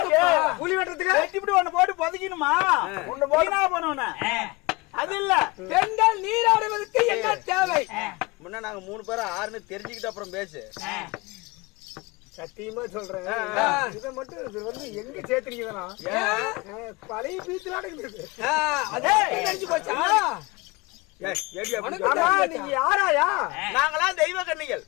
குழி வெட்டுறதுக்கு ஒண்ணு போட்டு பொதுக்கணுமா? ஒண்ணு போனா போனோன்னு அது இல்ல. பெண்கள் நீராடுவதற்கு என்ன தேவை? முன்ன நாங்க 3 பேரும் 6ன்னு தெரிஞ்சுக்கிட்டு அப்புறம் பேசு. சத்தியமா சொல்றேன், இதை மட்டும் இது வந்து எங்க சேர்த்துறீங்கன்னா பழைய பீச்சுல இருக்குது. நினைச்சு போச்சா? நீங்க யாராயா? நாங்களாம் தெய்வ கன்னிகள்.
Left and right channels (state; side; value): quieter; right; 24.0 dB